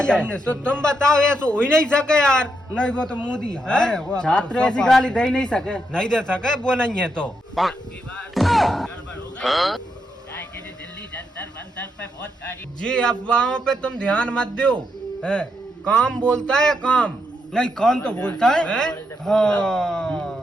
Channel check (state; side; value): normal; both; correlation 0.81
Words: तो तुम बताओ, ऐसा हो ही नहीं सके यार। नहीं वो तो मोदी हार है वो, अब छात्र तो ऐसी गाली दे ही नहीं सके। नहीं दे सके, वो नहीं है तो। जी अफवाहों पे तुम ध्यान मत दो, है। काम बोलता है काम। नहीं कौन तो बोलता है, हैं?